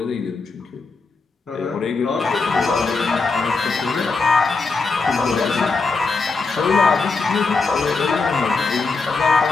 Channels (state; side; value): quieter; right; 4.1 dB